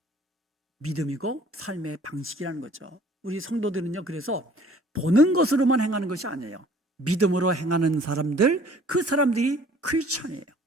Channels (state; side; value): normal; both; correlation 0.54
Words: 믿음이고 삶의 방식이라는 거죠. 우리 성도들은요, 그래서 보는 것으로만 행하는 것이 아니에요. 믿음으로 행하는 사람들, 그 사람들이 크리스천이에요.